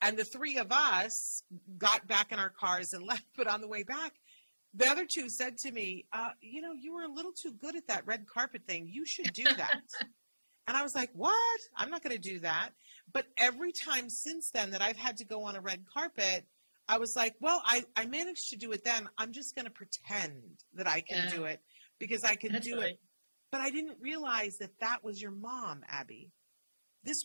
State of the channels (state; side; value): inverted; both; correlation -1.00